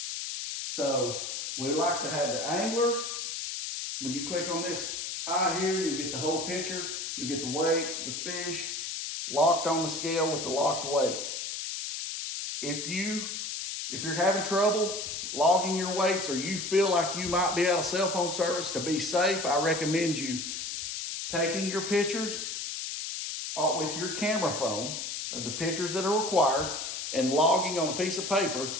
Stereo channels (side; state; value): left; noise; hiss, 5 dB below the sound